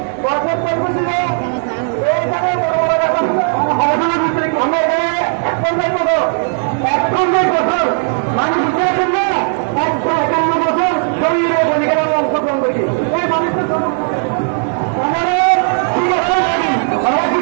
বাসের পর্ব ছিল এইখানে বড় বড় আমরা এখানে এক বছর মানুষ বুঝেছেন না 151 বছর শরীরে বলিকেরা অংশগ্রহণ করেছি এই মানুষের আমাদের ঠিক আছে আমরা কি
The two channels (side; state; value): left; silent; 66 dB below the other